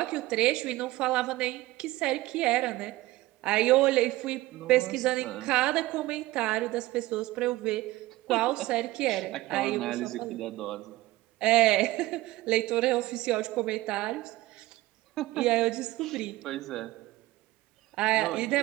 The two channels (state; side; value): quieter; left; 18.1 dB